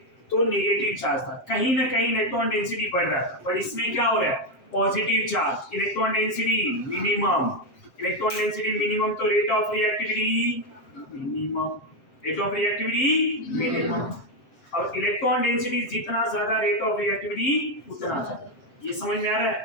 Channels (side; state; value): right; late; 7.6 ms